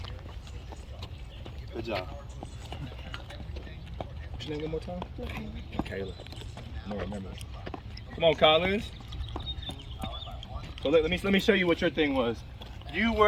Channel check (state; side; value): identical; both; correlation 1.00